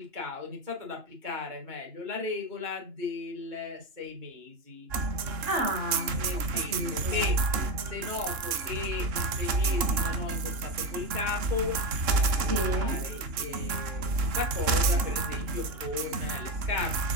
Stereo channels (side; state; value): left; late; 2.9 ms